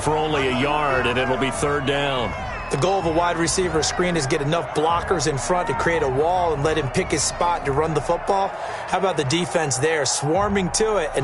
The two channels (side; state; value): both; identical; correlation 1.00